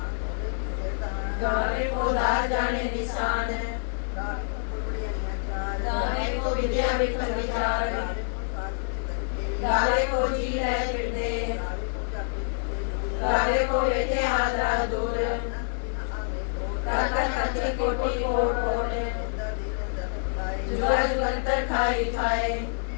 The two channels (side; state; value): right; silent; digital silence